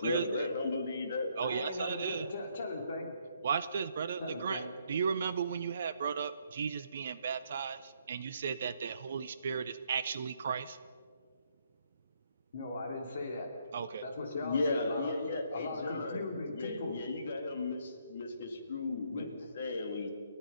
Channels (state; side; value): inverted; both; correlation -0.71